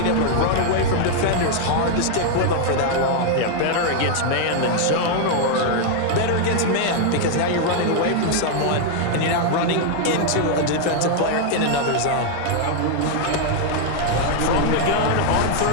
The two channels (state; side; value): different; both; correlation 0.00